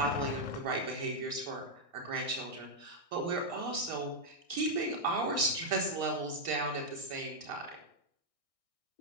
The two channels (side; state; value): left; late; 1.6 ms